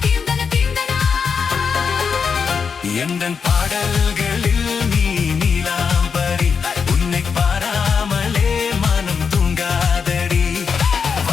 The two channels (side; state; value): right; quieter; 6.0 dB